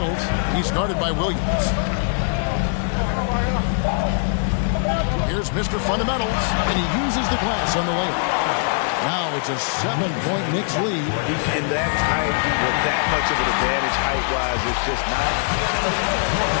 He's guarded by Williams. Here's Mr. Fundamentals, and he uses the glass on the layup. Now it's a 7-point Knicks lead. In that tight, with that much of an advantage height-wise, it's just not. The end of the third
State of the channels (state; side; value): silent; right; 57 dB below the other